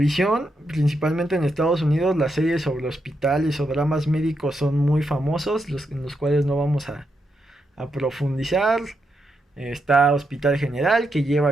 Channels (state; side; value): normal; both; correlation 0.82